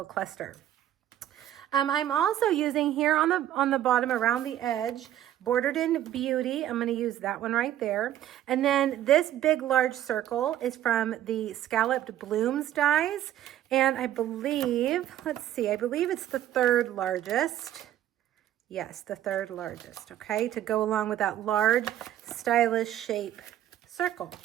cluster. I'm also using here on the bottom around the edge, Bordered in Beauty. I'm going to use that one right there. And then this big large circle is from the Scalloped Blooms dies. And I believe, I believe it's the 3rd largest. Yes, the 3rd largest, okay, to go along with that large, stylish shape circle.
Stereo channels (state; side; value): quieter; left; 12.1 dB